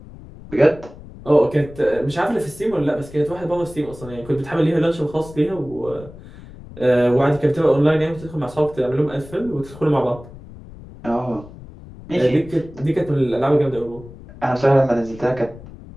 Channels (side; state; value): left; noise; rumble, 17 dB below the sound